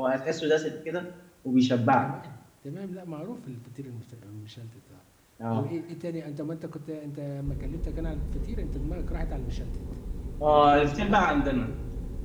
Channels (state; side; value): identical; both; correlation 1.00